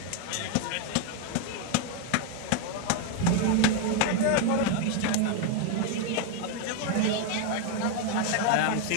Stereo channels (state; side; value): different; both; correlation 0.01